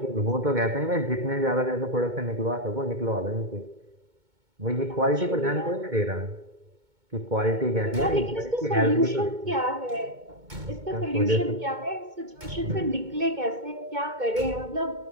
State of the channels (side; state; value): left; late; 2.2 ms